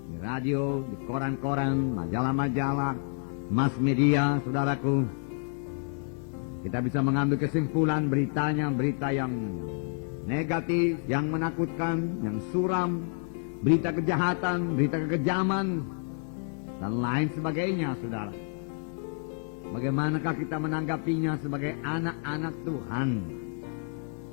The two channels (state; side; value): silent; right; 58 dB below the other